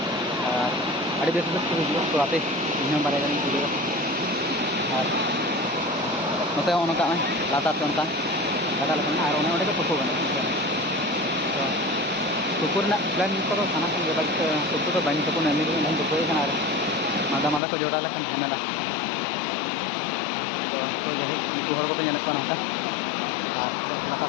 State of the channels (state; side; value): drops out; right; at 17.6 s